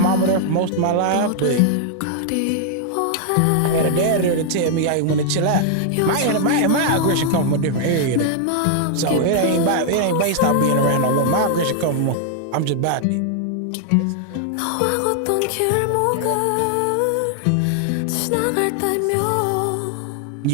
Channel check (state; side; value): different; both; correlation 0.00